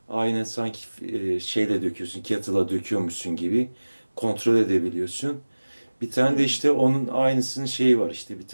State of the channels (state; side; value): inverted; both; correlation -1.00